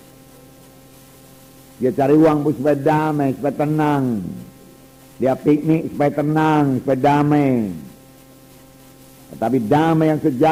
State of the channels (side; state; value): both; identical; correlation 1.00